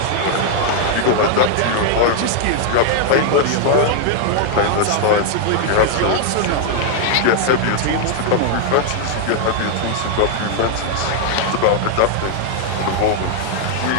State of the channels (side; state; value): both; different; correlation 0.00